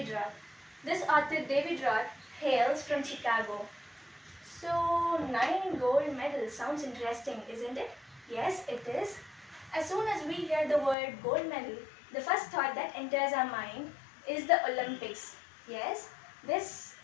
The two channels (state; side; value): drops out; right; at 11.0 s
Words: Roth. This author David Roth hails from Chicago. So 9 gold medals sounds interesting, isn't it? Yes, it is. As soon as we hear the word gold medal, the first thought that enters our mind is the Olympics. Yes, this